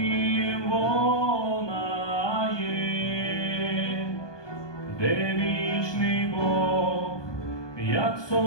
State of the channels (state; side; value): late; right; 1.2 ms